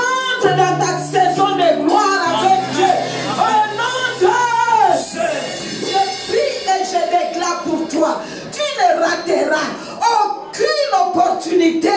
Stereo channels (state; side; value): identical; both; correlation 1.00